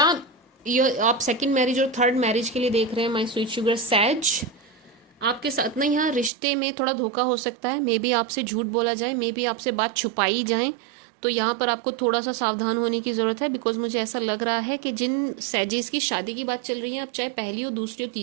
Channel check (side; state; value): left; drops out; at 6.3 s